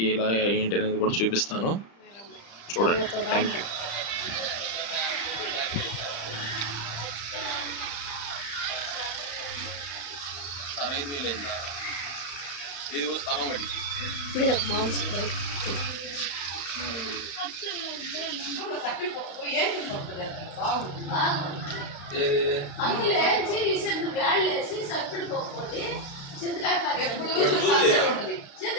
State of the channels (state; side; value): late; right; 35 ms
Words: ఇలా ఏంటి అనేది కూడా చూపిస్తాను, చూడండి. Thank you. సార్ 5,000 అయిందా? ఇది స్థలం వాటికి